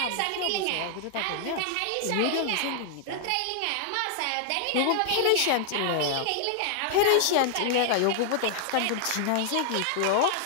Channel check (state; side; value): different; both; correlation 0.00